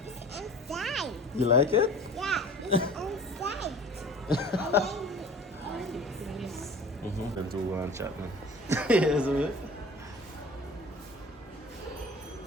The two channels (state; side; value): normal; both; correlation 0.43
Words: it's inside. You like it? Yeah, it's inside. Then do one chat now. Yes, a bit.